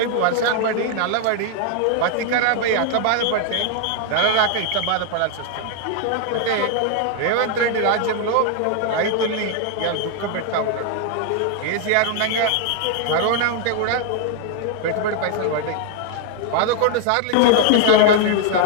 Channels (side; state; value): both; different; correlation 0.00